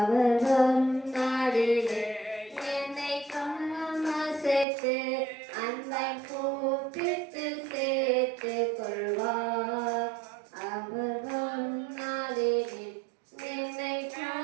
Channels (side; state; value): left; drops out; at 4.7 s